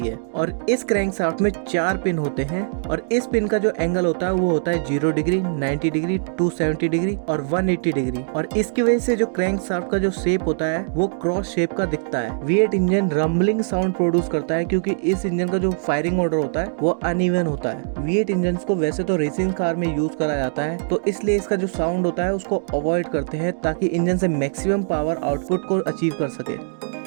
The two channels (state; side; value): silent; left; digital silence